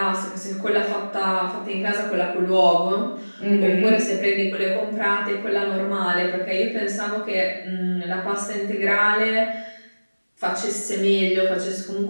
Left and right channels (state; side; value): inverted; both; correlation -1.00